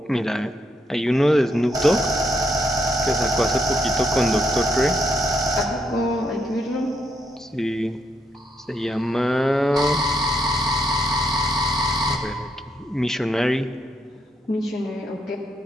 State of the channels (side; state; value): both; normal; correlation 0.77